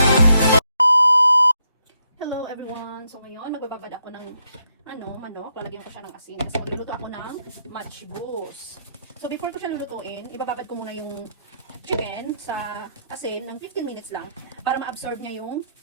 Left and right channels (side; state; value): both; inverted; correlation -0.77